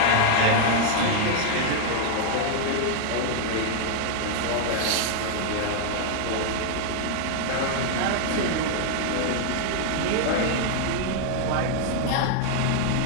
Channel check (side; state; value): both; different; correlation 0.00